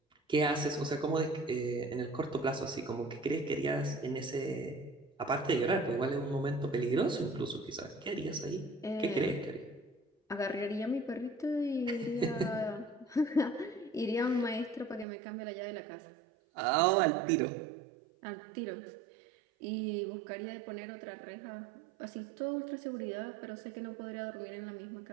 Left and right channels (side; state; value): left; drops out; at 15.1 s